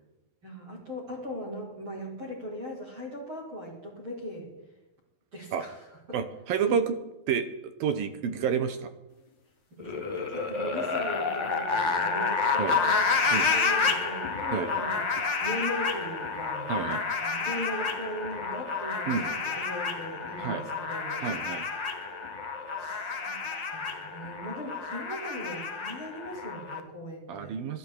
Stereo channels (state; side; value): late; left; 12 ms